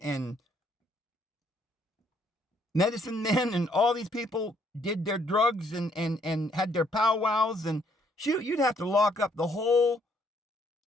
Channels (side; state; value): both; normal; correlation 0.68